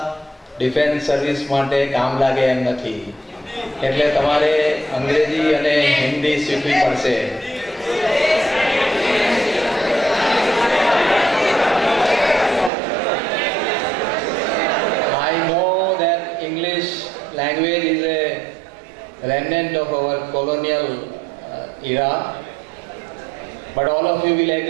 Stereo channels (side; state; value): left; drops out; at 12.7 s